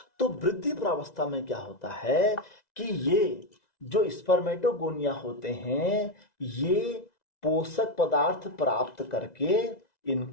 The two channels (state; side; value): late; right; 2.0 ms